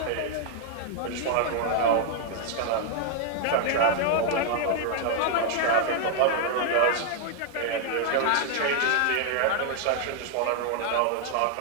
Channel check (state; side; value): different; both; correlation 0.00